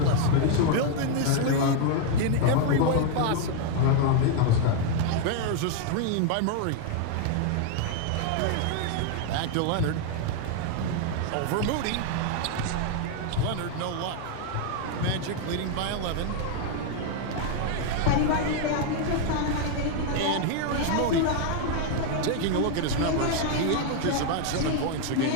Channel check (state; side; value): different; both; correlation 0.00